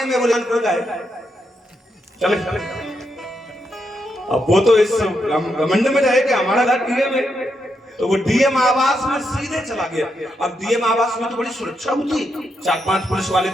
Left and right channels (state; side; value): normal; both; correlation 0.82